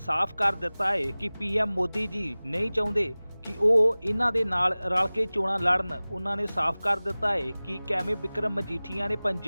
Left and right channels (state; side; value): inverted; both; correlation -0.99